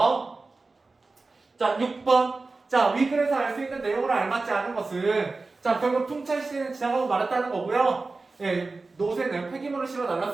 자, 6번. 자, 위글에서 알 수 있는 내용을 알맞지 않은 것은 자, 결국 풍차 시대는 지나가고 말았다는 거고요. 예, 노새는 폐기물을 실어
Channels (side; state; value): left; quieter; 3.7 dB